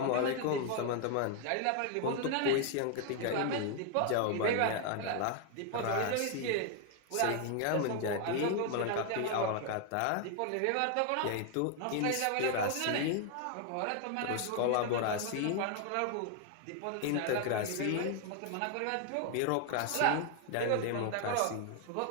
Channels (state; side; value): different; both; correlation 0.00